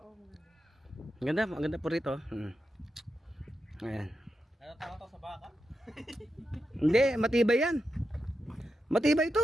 Ang ganda po rito. Ayan. Ano tawag to sa baka? Hindi, matibay yan. Matibay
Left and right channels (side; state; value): both; normal; correlation 0.88